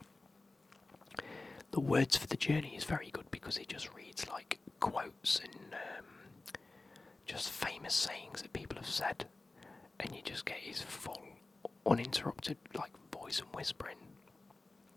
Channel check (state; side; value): quieter; right; 3.3 dB